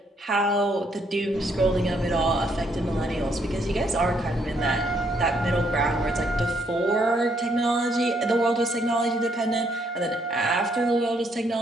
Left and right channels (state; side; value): normal; both; correlation 0.71